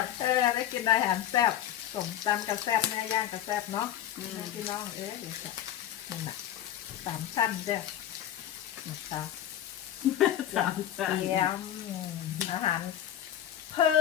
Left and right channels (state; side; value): quieter; right; 11.2 dB